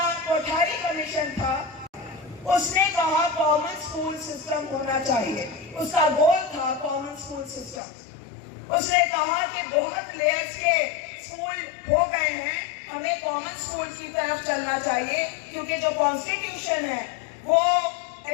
कोठारी कमीशन था उसने कहा कॉमन स्कूल सिस्टम होना चाहिए, उसका गोल था कॉमन स्कूल सिस्टम। उसने कहा कि बहुत लेयर्स के स्कूल हो गए हैं, हमें कॉमन स्कूल की तरफ चलना चाहिए, क्योंकि जो कॉन्स्टिट्यूशन है वो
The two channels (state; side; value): drops out; right; at 7.8 s